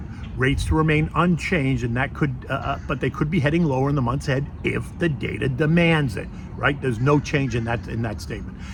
Rates to remain unchanged, and that could, but they could be heading lower in the months ahead if the data demands it, right? There's no change in that statement.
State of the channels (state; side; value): identical; both; correlation 1.00